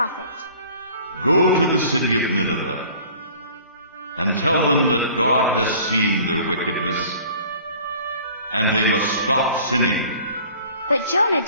Go to the city of Nineveh and tell them that God has seen their wickedness, and they must stop sinning. But Jonah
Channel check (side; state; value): both; inverted; correlation -0.49